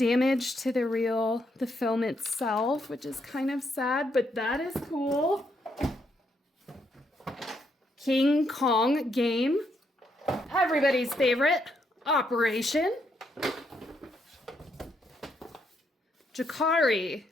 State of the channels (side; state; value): both; normal; correlation 0.76